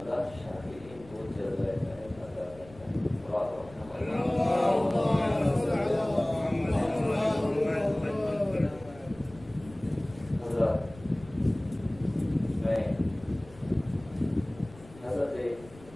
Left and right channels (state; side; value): noise; left; rumble, 21 dB below the sound